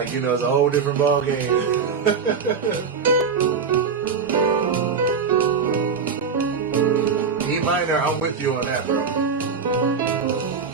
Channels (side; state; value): left; quieter; 5.7 dB